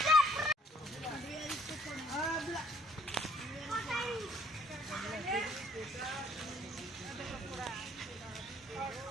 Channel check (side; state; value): both; normal; correlation 0.62